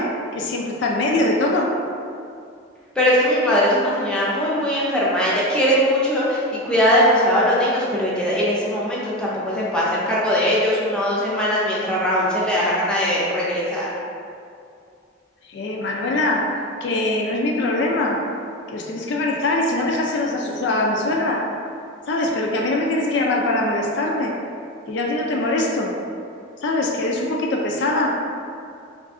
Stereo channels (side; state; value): both; normal; correlation 0.19